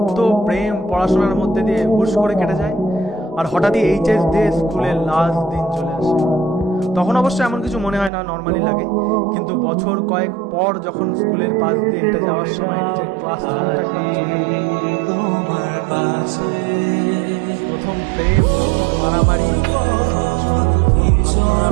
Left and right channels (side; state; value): left; drops out; at 8.1 s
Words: প্রেম, পড়াশোনার মধ্যে দিয়ে হুশ করে কেটে যায়। আর হঠাৎই এইচএস দিয়ে স্কুলের লাস্ট দিন চলে আসে। তখন অবশ্য এমন কিছু মনে হয় না, নর্মালি লাগে। কিন্তু বছর কয়েক পর যখন স্কুলের পাশ দিয়ে হেঁটে যাওয়ার সময় নিজের ক্লাসরুমটা একবার চোখে পড়ে, প্রথম প্রেম, মারামারি,